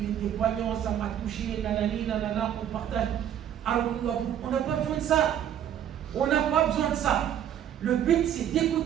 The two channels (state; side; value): quieter; left; 10.1 dB